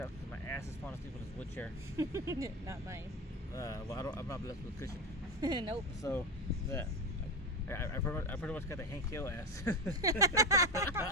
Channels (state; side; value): normal; both; correlation 0.19